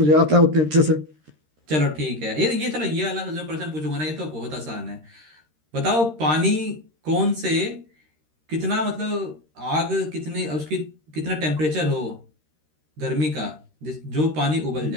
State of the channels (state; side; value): late; left; 13 ms